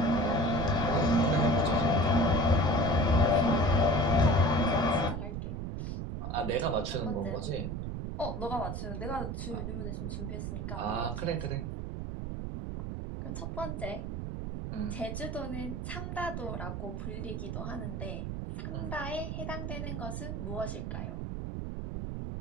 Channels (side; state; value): right; noise; rumble, 4 dB below the sound